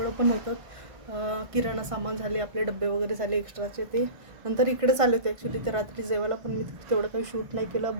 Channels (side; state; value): left; late; 1.5 ms